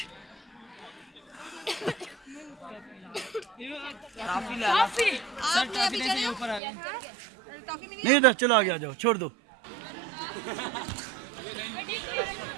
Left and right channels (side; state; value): left; drops out; at 6.6 s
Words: नहीं था, चलो आगे आ जाओ, छोड़ दो,